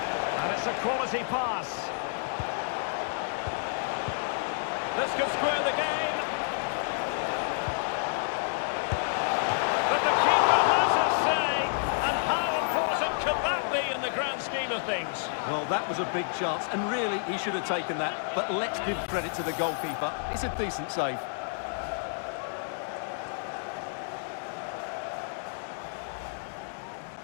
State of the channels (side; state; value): right; silent; digital silence